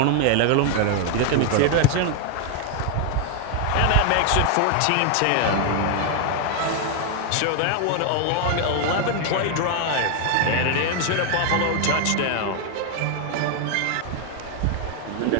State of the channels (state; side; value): different; both; correlation 0.01